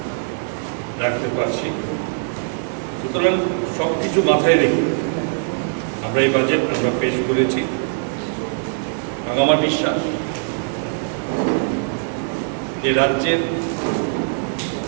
রাখতে পারছি। সুতরাং সব কিছু মাথায় রেখে আমরা এই বাজেট আমরা পেশ করেছি এবং আমার বিশ্বাস যে রাজ্যের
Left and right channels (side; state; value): left; silent; digital silence